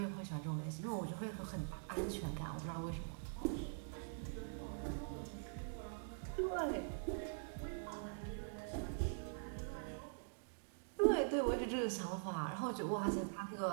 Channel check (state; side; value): silent; left; digital silence